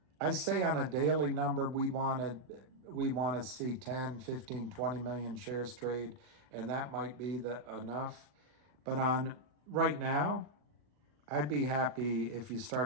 I say on a daily number, we want to see 10, 15, 20 million shares trade, and that might be enough. But on right now, I'd be happy if you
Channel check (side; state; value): left; late; 40 ms